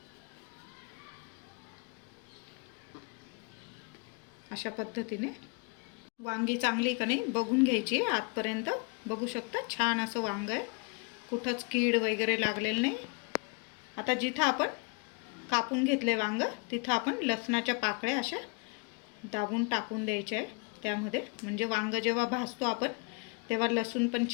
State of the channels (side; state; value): right; quieter; 34.3 dB